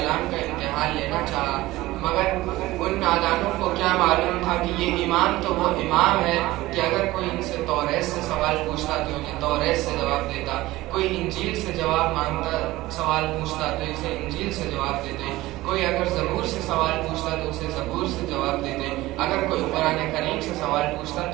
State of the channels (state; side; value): quieter; left; 18.0 dB